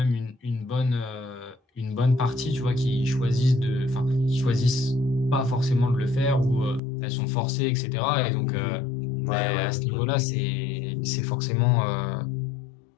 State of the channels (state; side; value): drops out; right; at 6.8 s